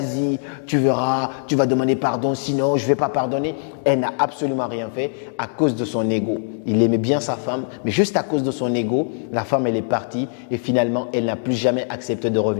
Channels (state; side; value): silent; right; digital silence